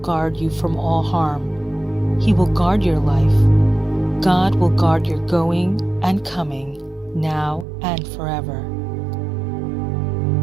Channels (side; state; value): left; drops out; at 7.7 s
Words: you from all harm. He will guard your life. God will guard your going and coming, now and forever.